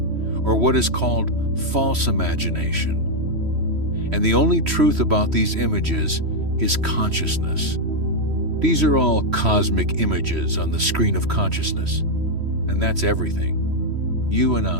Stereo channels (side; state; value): left; late; 3.1 ms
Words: or what is called false imagination. And the only truth about these images is consciousness. These are all cosmic images on the screen of consciousness. And that's everything. You and